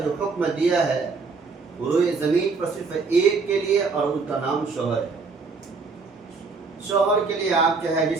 جو حکم دیا ہے وہ روئے زمین پر صرف ایک کے لیے، اور ان کا نام شوہر ہے۔ شوہر کے لیے آپ چاہے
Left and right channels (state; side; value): quieter; left; 4.5 dB